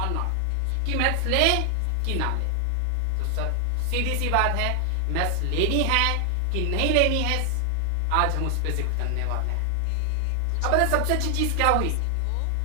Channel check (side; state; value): both; different; correlation 0.00